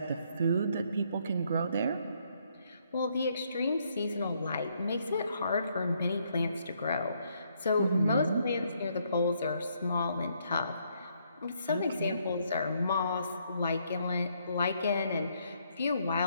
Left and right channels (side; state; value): both; inverted; correlation -0.71